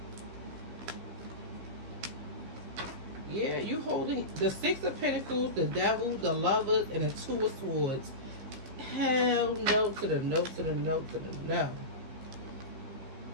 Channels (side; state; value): left; late; 15 ms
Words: Yeah, you holding the Six of Pentacles, the Devil, the Lovers, and the Two of Swords. Hell no to the no to the no to the no.